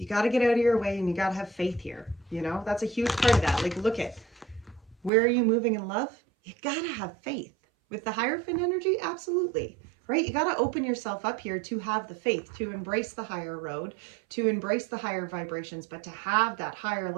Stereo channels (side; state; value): left; drops out; at 5.1 s